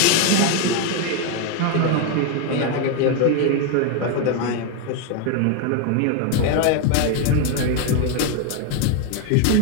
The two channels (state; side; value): different; both; correlation 0.01